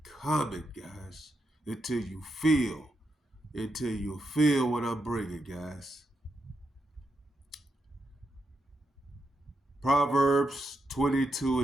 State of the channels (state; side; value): normal; both; correlation 0.84